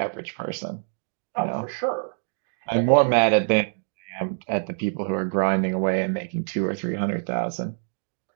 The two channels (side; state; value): left; silent; digital silence